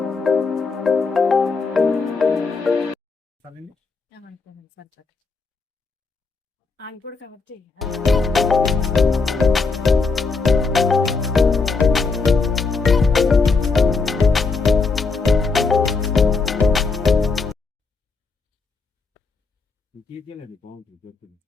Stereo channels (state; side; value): quieter; right; 4.3 dB